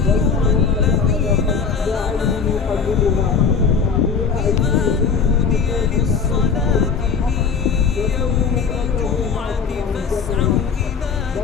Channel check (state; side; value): quieter; right; 5.8 dB